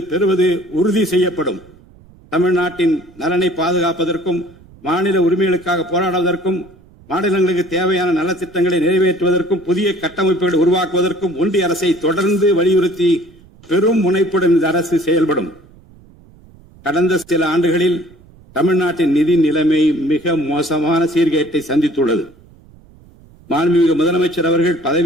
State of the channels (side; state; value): right; noise; rumble, 25 dB below the sound